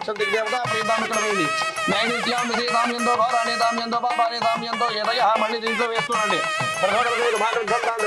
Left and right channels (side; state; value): both; identical; correlation 1.00